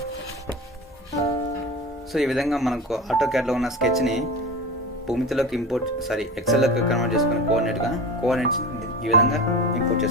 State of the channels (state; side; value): normal; both; correlation 0.30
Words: సో ఈ విధంగా మనకు ఆటోక్యాడ్లో ఉన్న స్కెచ్ని భూమితిలోకి ఎక్సెల్లోకి కన్వర్ట్ చేసుకుని కోఆర్డినేట్స్ ఈ విధంగా ఇంపోర్ట్